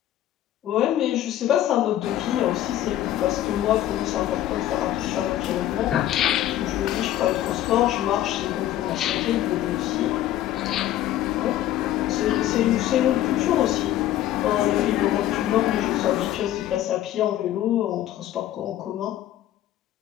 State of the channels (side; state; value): right; quieter; 12.9 dB